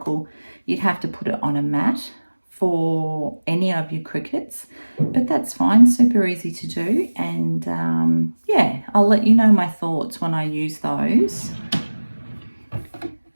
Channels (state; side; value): inverted; both; correlation -1.00